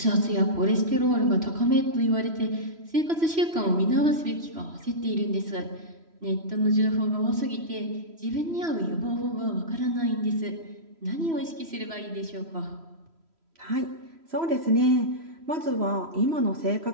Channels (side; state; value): left; late; 3.0 ms